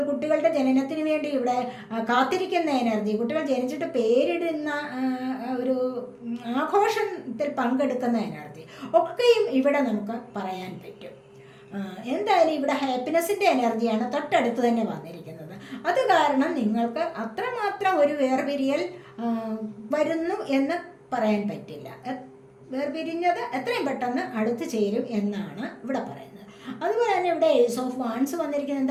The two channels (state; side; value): identical; both; correlation 1.00